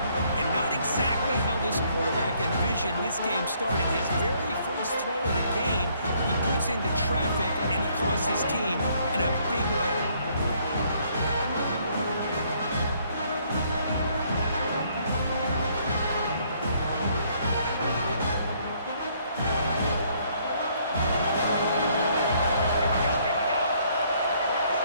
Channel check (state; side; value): inverted; both; correlation -0.66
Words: And not exactly how this quarterback envisioned this game starting. His very first throw of the game, he puts into traffic, and he costs his team in a big way.